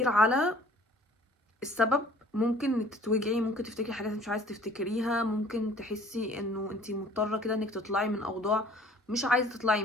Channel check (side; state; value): both; normal; correlation 0.52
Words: على السبب ممكن انك تتوجعي، ممكن تفتكري حاجات مش عايزه تفتكريها، ممكن تحسي انه انتي مضطره كده انك تطلعي من اوضاع مش عايزه تطلعي